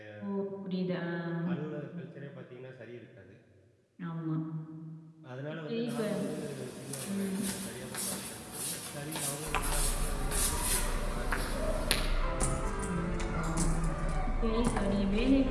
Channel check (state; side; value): identical; both; correlation 1.00